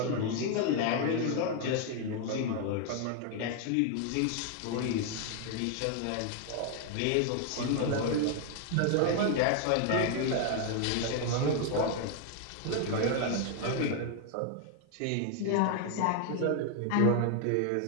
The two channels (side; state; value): both; different; correlation 0.00